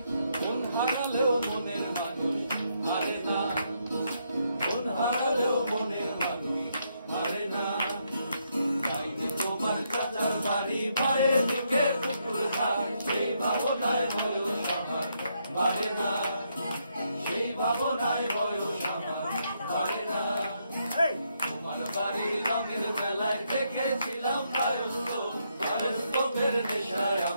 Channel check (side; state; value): both; inverted; correlation -0.77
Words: মন হারালেও মনের মানুষ হারে না মন হারালেও মনের মানুষ হারে না যাইনি তোমার চাচার বাড়ি মায়ের দিকে পুকুর ঘাট সেই ভাবনায় বয়স আমার বাড়ে না সেই ভাবনায় বয়স আমার বাড়ে না তোমার বাড়ির রঙের বেলায় দেখেছিলাম বায়োস্কোপের নেশায়